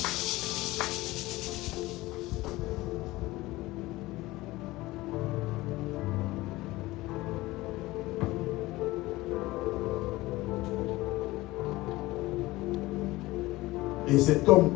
Et cet homme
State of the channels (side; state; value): right; quieter; 19.2 dB